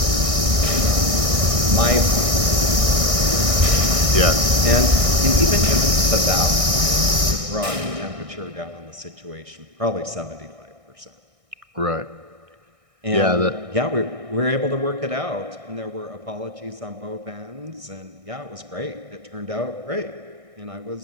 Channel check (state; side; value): late; left; 1.6 ms